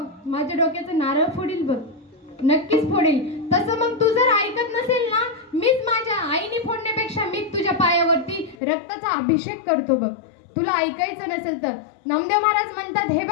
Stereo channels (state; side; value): drops out; right; at 8.6 s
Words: माझ्या डोक्याचं नारळ फोडील बघ, नक्कीच फोडेल. तसं मग तू जर ऐकत नसेल ना, मीच माझ्या आईने फोडण्यापेक्षा मीच तुझ्या पायावरती रक्ताचा अभिषेक करतो बघ, तुला ऐकायचं नसेल तर. नामदेव महाराज म्हणतात, हे